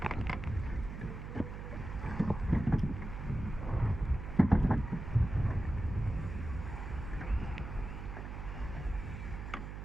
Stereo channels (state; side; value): noise; right; hum, 8 dB below the sound